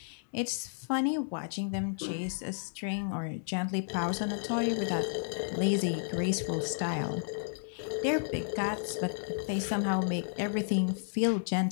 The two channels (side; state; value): right; silent; digital silence